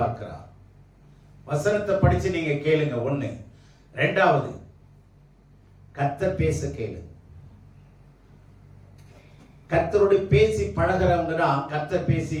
வசனத்தை படிச்சு நீங்க கேளுங்க. ஒண்ணு. ரெண்டாவது, கர்த்தர் பேச கேளு. கர்த்தரோடு பேசி பழகிறவங்க தான் கர்த்தர் பேசி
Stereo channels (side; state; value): both; identical; correlation 1.00